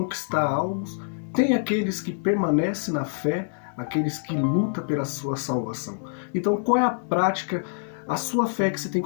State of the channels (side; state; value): right; silent; digital silence